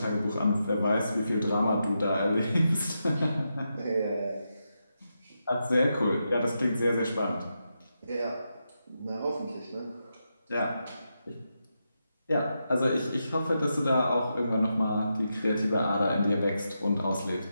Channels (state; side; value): inverted; both; correlation -0.86